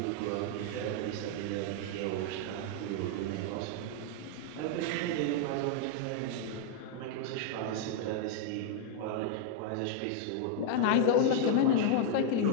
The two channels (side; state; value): both; different; correlation -0.01